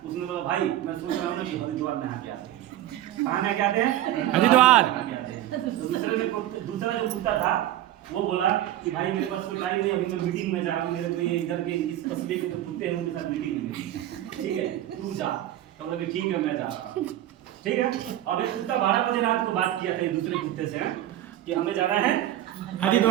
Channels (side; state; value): left; quieter; 13.1 dB